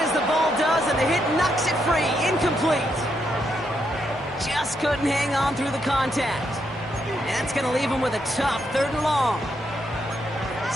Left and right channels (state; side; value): normal; both; correlation 0.79